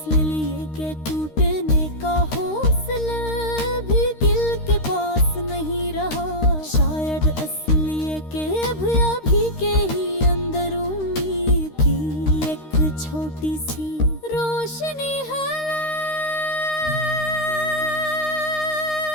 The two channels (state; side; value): late; right; 13 ms